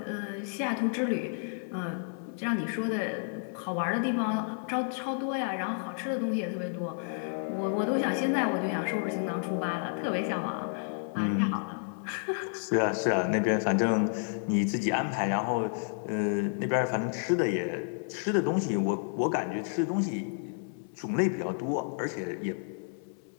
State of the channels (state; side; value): silent; right; 57 dB below the other